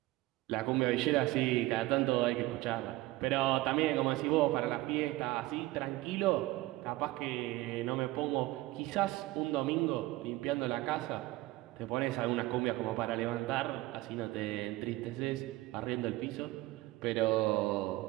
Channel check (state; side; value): quieter; left; 18.4 dB